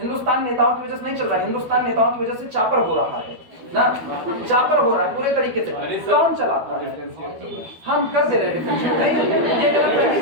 नेताओं की वजह से नहीं चल रहा है, हिंदुस्तान नेताओं की वजह से चापर हो रहा है ना, चापर हो रहा है पूरे तरीके से। कौन चलाता है? हम कर दे रहे हैं। ये गलतफहमी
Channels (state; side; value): late; left; 12 ms